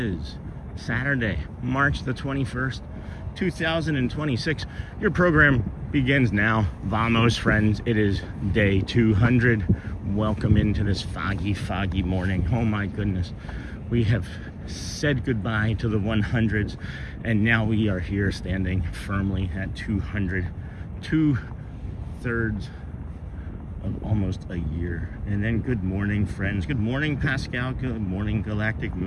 Saturday, March the 21st, 2026. Your program begins now. Vamos, friends. It is day 200. Welcome into this foggy morning. Oh my goodness. We have said goodbye to the 100s, and now we are here standing firmly at 200. 2/3 of almost a year. And then good morning, friends. Good morning, Pascal. Good morning, Galactic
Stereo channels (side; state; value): both; identical; correlation 1.00